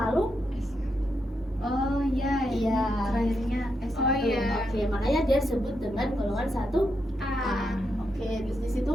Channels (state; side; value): normal; both; correlation 0.83